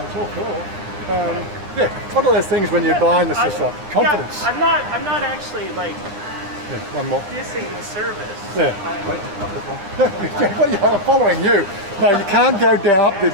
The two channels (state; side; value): late; left; 10 ms